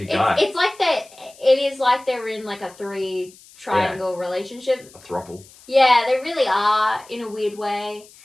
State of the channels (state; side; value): noise; left; hiss, 24 dB below the sound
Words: guy. It's like that. It is like they're in like a 3 triangle relationship. A throuple. Yeah, they really are in a weird way.